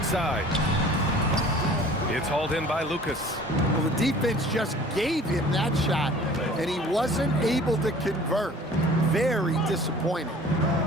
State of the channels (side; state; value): both; normal; correlation 0.48